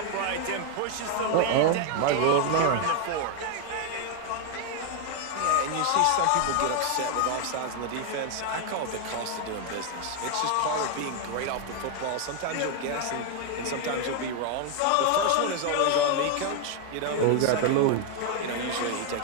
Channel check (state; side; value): different; both; correlation 0.01